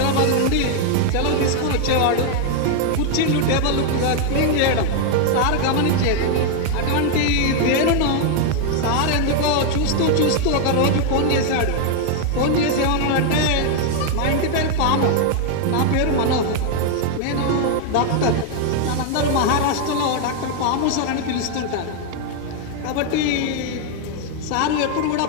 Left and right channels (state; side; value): different; both; correlation 0.00